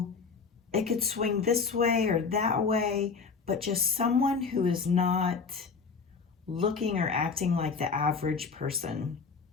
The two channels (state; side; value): quieter; right; 5.1 dB